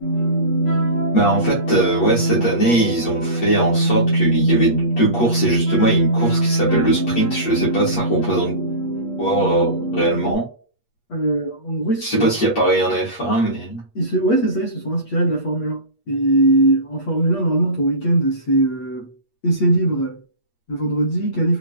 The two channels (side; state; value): right; late; 8.4 ms